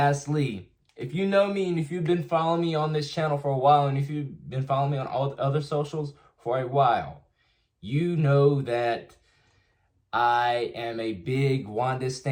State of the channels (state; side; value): identical; both; correlation 1.00